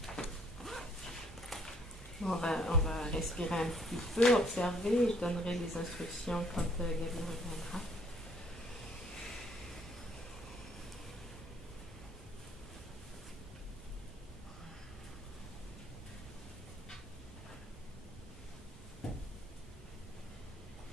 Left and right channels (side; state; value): both; normal; correlation 0.64